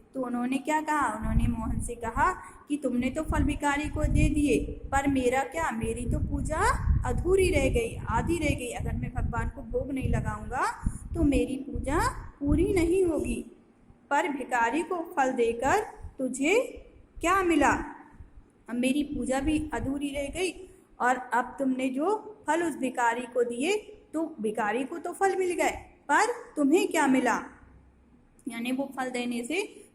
तो उन्होंने क्या कहा, उन्होंने मोहन से कहा कि तुमने तो फल भिखारी को दे दिए, पर मेरा क्या, मेरी तो पूजा अधूरी रह गई, आधी रह गई। अगर मैं भगवान को भोग नहीं लगाऊंगा तो मेरी पूजा पूरी नहीं होगी। पर भिखारी को फल देकर तुझे क्या मिला? अब मेरी पूजा भी अधूरी रह गई और अब तुमने जो फल उस भिखारी को दिए तो भिखारी को तो फल मिल गए, पर तुम्हें क्या मिला, यानी वो फल देने से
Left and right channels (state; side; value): identical; both; correlation 1.00